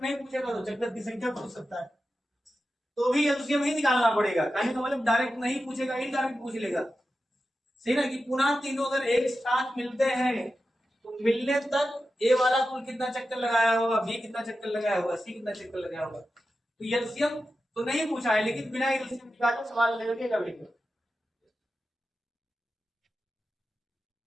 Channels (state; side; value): normal; both; correlation 0.92